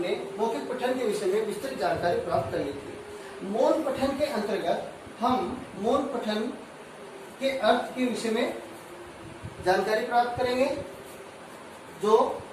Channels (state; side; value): identical; both; correlation 1.00